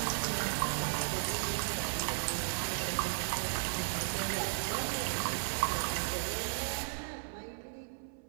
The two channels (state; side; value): silent; left; 54 dB below the other